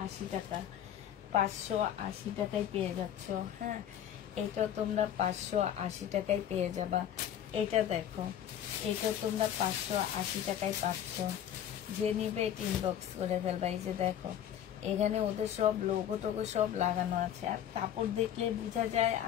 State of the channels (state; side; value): quieter; right; 10.3 dB